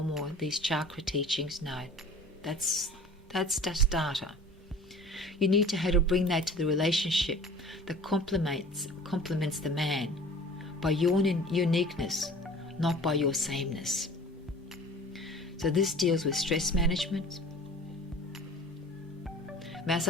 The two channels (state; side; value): normal; both; correlation 0.44